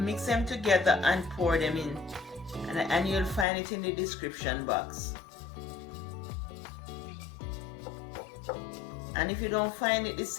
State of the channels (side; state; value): right; drops out; at 3.5 s